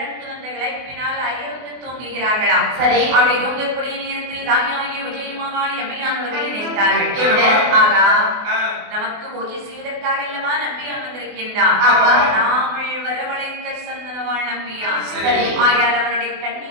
வந்த களைப்பினால் அயர்ந்து தூங்குகிறார்களாம். சரி. அப்படி தூங்கக்கூடிய நேரத்தில் தாயாகிய உஜயமாகாளி அம்மையானவர்கள் நினைத்தார்கள், ஆகா நமக்கு பூஜை செய்வதற்காக அல்லவா நம்பியான் வந்திருக்கின்றான், நாமல் வரவழைத்த சந்தனவாள் நம்பியான். ஆயால் அவருடைய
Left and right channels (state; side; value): late; left; 24 ms